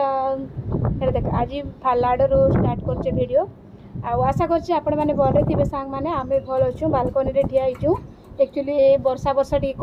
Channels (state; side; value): identical; both; correlation 1.00